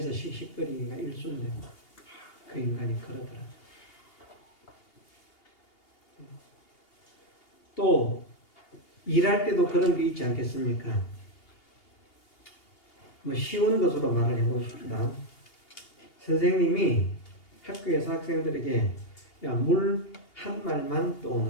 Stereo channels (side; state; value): right; late; 2.8 ms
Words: 씩씩거리기가 일순데 그 인간이 그러더라. 또 일할 때도 그런 게 있지 않겠습니까? 쉬운 것으로 말을 해봅시다. 선생님이 학교에서 학생들에게 물 한 말만